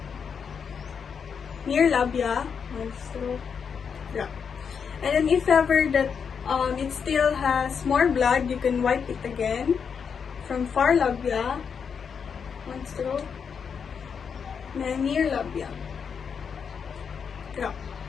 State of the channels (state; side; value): quieter; right; 6.6 dB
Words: Near labia, one stroke, drop. And then if ever that it still has more blood, you can wipe it again. From far labia, one stroke. Then near labia. Drop.